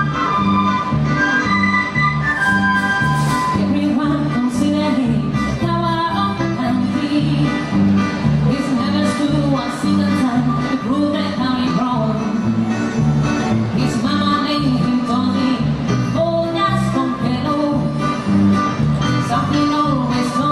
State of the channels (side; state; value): both; identical; correlation 1.00